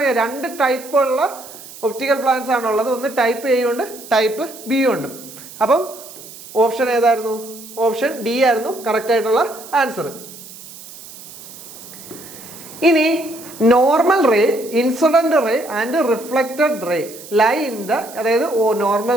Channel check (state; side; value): noise; right; hiss, 16 dB below the sound